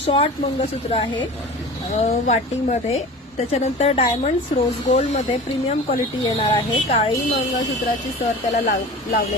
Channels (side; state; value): both; normal; correlation 0.36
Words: मंगळसूत्र आहे वाटीमध्ये। त्याच्यानंतर डायमंड्स रोज गोल्ड मध्ये प्रीमियम क्वालिटी येणार आहे। काळी मंगळसूत्राची सर त्याला